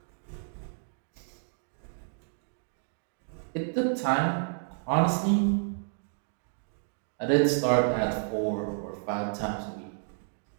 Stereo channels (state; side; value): silent; left; 57 dB below the other